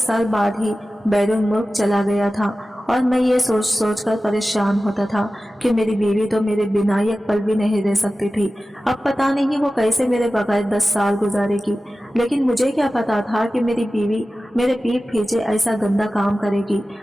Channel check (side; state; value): both; normal; correlation 0.95